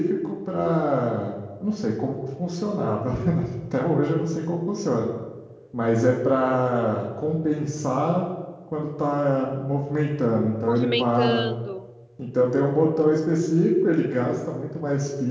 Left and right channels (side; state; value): both; identical; correlation 1.00